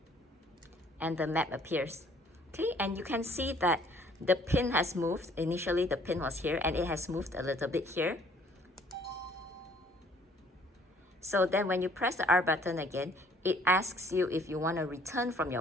and the map appears. Okay, and you can see that the pin has moved. Initially the pin was here and it has moved a little bit here. So then when you press the R button again, it asks you if you want to return from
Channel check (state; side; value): normal; both; correlation 0.59